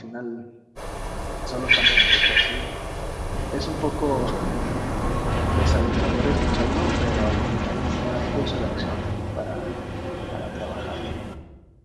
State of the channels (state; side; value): identical; both; correlation 1.00